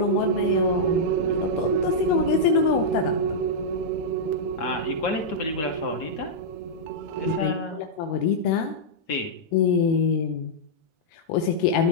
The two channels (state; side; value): late; right; 6.4 ms